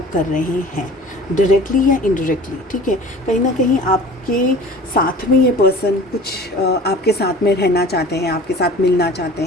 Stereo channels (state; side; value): normal; both; correlation 0.43